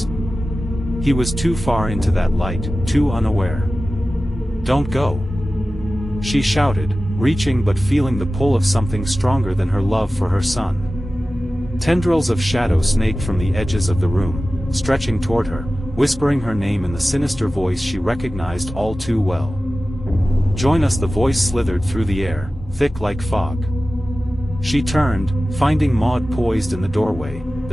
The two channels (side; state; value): both; normal; correlation 0.95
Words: He was too far into that light, too unaware. "Don't go," she shouted, reaching but feeling the pull of something stronger than her love for her son. Tendrils of shadow snaked from the edges of the room, stretching toward her, whispering her name in the sinister voice she recognized all too well. "Join us." The voice slithered through the air, thick like fog. She turned, finding Maud poised in the doorway,